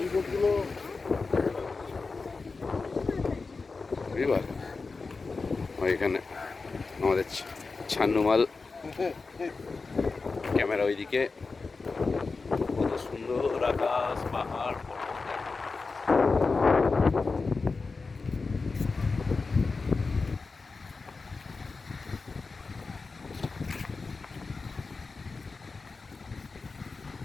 বোটগুলো বুঝবার ওইখানে আমাদের ছান্নুমাল ক্যামেরা ওইদিকে, কত সুন্দর আকাশ পাহাড় পর্বত।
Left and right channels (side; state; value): right; quieter; 4.2 dB